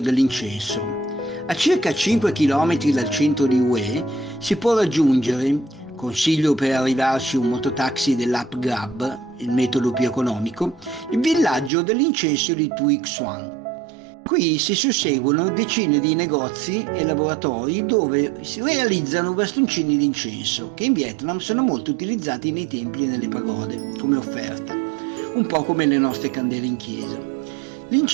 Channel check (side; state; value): left; drops out; at 11.7 s